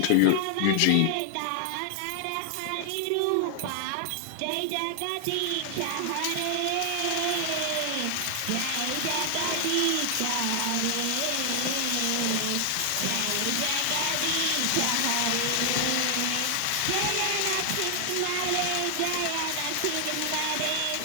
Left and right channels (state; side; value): different; both; correlation 0.00